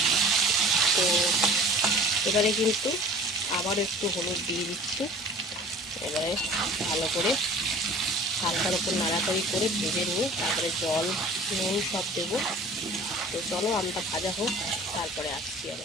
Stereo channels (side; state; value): both; normal; correlation 0.45